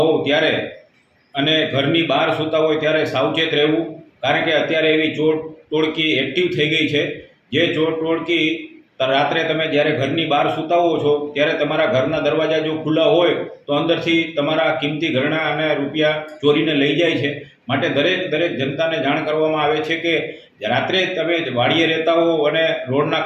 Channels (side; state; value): both; identical; correlation 1.00